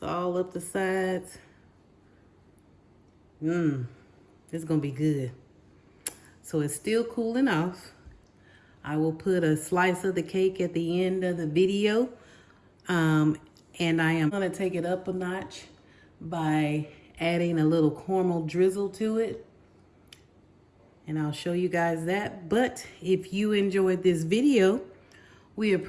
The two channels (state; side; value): identical; both; correlation 1.00